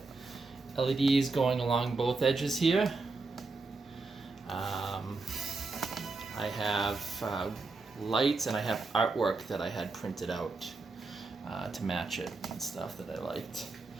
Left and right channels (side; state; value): left; quieter; 3.7 dB